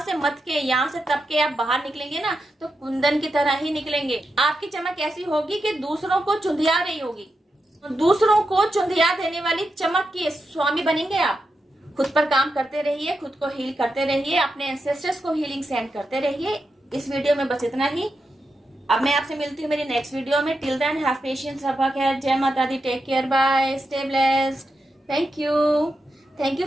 से मत के, यहाँ से तप के आप बाहर निकलेंगे ना तो कुंदन की तरह ही निकलेंगे। आपकी चमक ऐसी होगी कि दूसरों को चुंधिया रही होगी, दूसरों को चुंधिया देने वाली चमक के स्वामी बनेंगे आप। खुद पर काम करते रहिए, खुद को हील करते रहिए, अपने एंसेस्टर्स को हीलिंग सेंड करते रहिए। इस वीडियो में बस इतना ही। अब मैं आपसे मिलती हूँ मेरी नेक्स्ट वीडियो में। टिल देन हैव पेशेंस, रब्बा खैर, जय माता दी, take care, bye, stay blessed, thank you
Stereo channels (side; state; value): both; normal; correlation 0.87